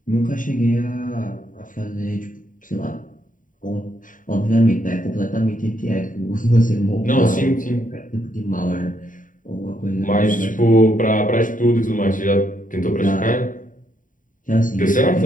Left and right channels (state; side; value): late; right; 0.38 ms